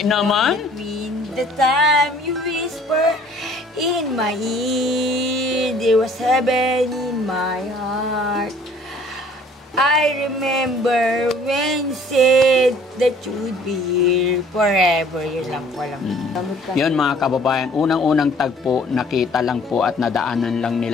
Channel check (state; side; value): normal; both; correlation 0.55